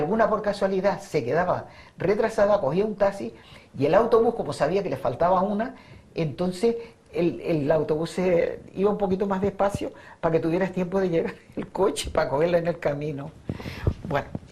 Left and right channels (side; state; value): both; identical; correlation 1.00